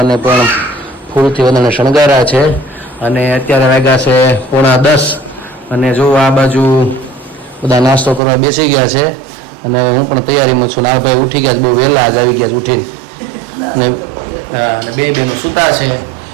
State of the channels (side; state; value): left; drops out; at 8.2 s